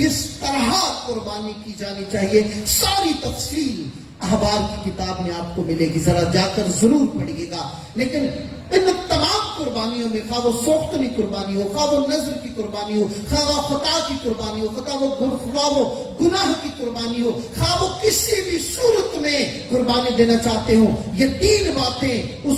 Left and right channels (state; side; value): identical; both; correlation 1.00